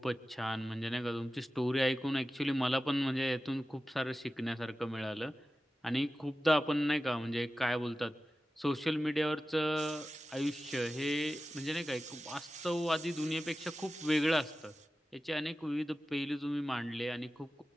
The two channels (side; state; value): both; normal; correlation 0.94